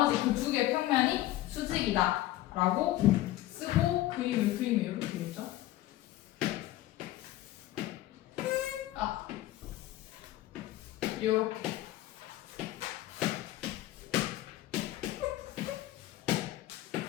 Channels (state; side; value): quieter; right; 15.3 dB